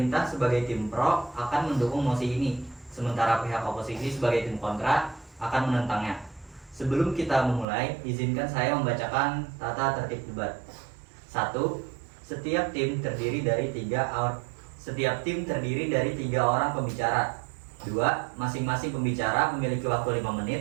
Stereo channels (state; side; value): drops out; left; at 7.7 s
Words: sebagai tim pro akan mendukung mosi ini, sementara pihak oposisi sebagai tim kontra akan menentangnya. Sebelum kita memulai, izinkan saya membacakan tata tertib debat. 1. Setiap tim terdiri dari 3 orang pembicara. 2. Masing-masing pembicara memiliki waktu 5